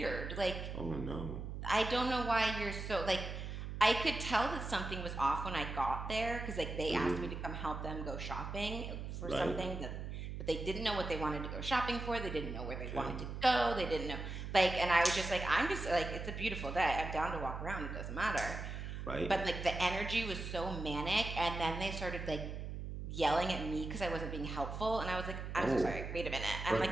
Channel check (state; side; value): noise; right; hum, 6 dB below the sound